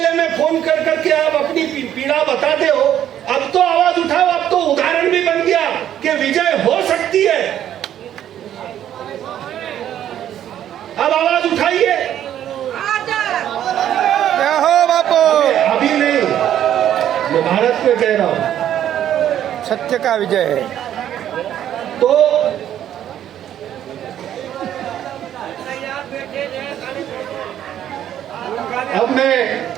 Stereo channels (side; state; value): left; quieter; 10.9 dB